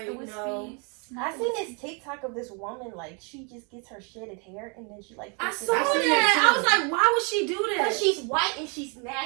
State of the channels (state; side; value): quieter; left; 35.1 dB